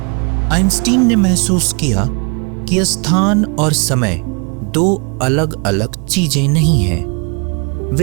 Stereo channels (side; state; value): left; quieter; 33.9 dB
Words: आइंस्टीन ने महसूस किया कि स्थान और समय दो अलग अलग चीजें नहीं हैं,